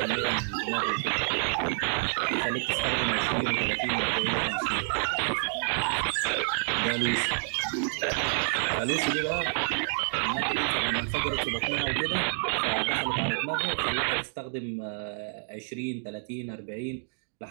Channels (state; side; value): silent; left; 59 dB below the other